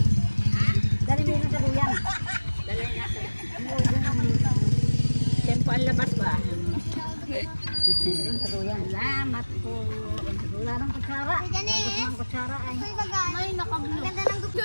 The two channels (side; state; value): both; inverted; correlation -1.00